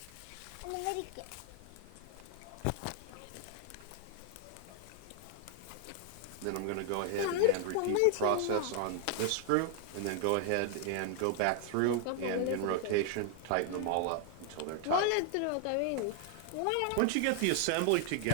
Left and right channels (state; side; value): different; both; correlation 0.00